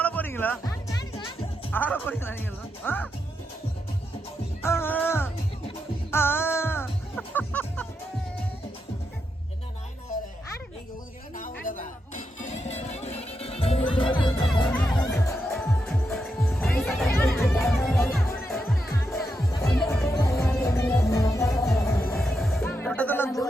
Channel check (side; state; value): both; normal; correlation 0.84